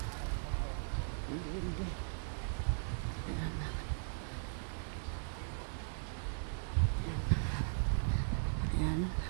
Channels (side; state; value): left; silent; 52 dB below the other